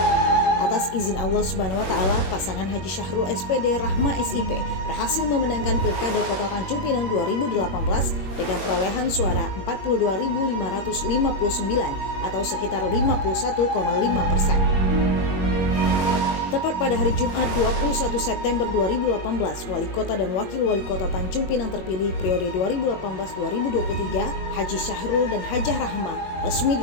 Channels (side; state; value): right; late; 21 ms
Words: Atas izin Allah Subhanahu wa Ta'ala, pasangan Haji Syahrul SPD Rahma SIP berhasil memenangkan Pilkada Kota Tanjung Pinang 2018 dengan perolehan suara 42.559 atau sekitar 51,5%. Tepat pada hari Jumat 21 September 2018, Wali Kota dan Wakil Wali Kota Tanjung Pinang terpilih periode 2018-2023, Haji Syahrul dan Hajah Rahma resmi